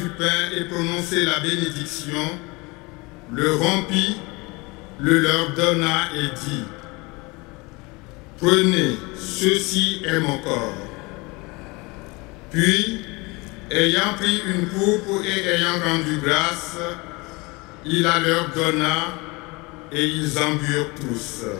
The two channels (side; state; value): right; quieter; 25.6 dB